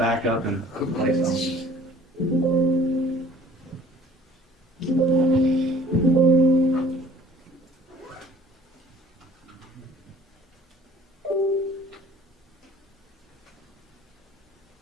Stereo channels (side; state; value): both; normal; correlation 0.53